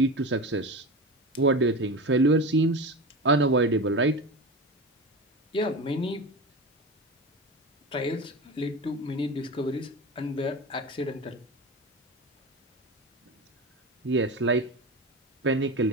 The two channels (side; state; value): both; normal; correlation 0.26